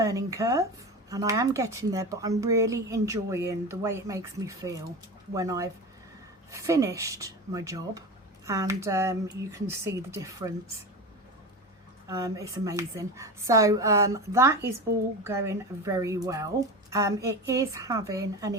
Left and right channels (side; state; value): both; normal; correlation 0.26